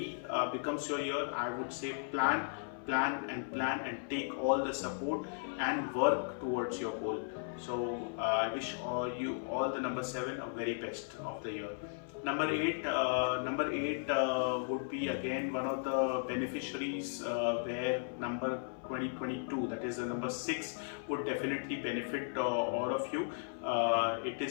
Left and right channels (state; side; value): silent; right; 54 dB below the other